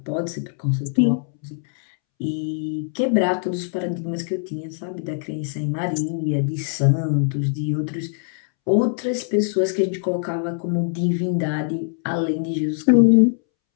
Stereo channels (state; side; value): silent; right; 64 dB below the other